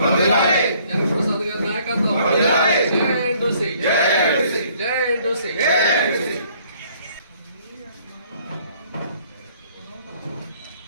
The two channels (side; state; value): both; inverted; correlation -0.61